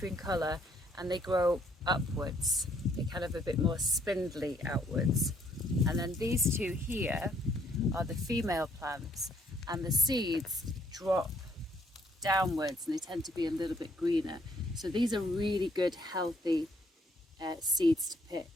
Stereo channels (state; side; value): normal; both; correlation 0.67